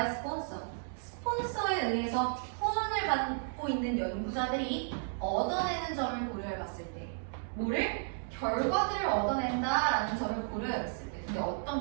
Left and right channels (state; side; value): silent; left; digital silence